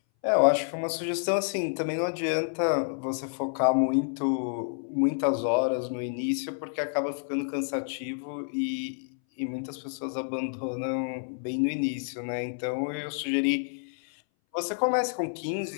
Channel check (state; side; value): silent; right; 59 dB below the other